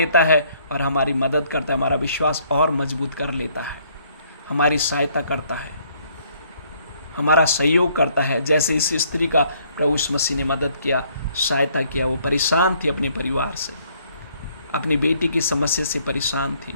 है और हमारी मदद करता है, हमारा विश्वास और मजबूत कर लेता है, हमारी सहायता करता है, हमारा सहयोग करता है। जैसे इस स्त्री का प्रभु यीशु मसीह ने मदद किया, सहायता किया। वो परेशान थी अपने परिवार से, अपनी बेटी की समस्या से परेशान थी,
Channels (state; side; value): inverted; both; correlation -0.65